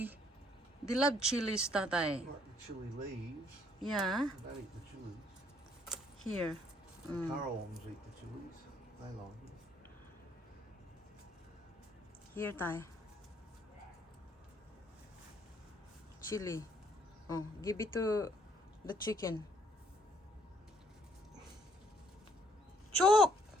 They love chilies, Tatay. Like the chili leaves. Yeah, They don't eat the chilies. here. The Currawongs eat the chilies. They like it. Here, Tay. Chili. Oh, give it to the chicken. Chok!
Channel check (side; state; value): both; normal; correlation 0.65